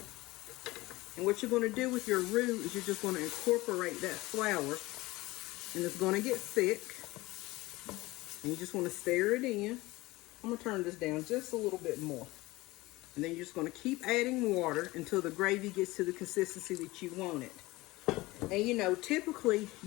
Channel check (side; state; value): right; quieter; 20.2 dB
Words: And what you're going to do with your roux is you're just going to incorporate that flour. And it's going to get thick. And you just want to stir it in. I'm going to turn this down just a little bit more. And then you're just going to keep adding water until the gravy gets to the consistency that you want it. And you know, typically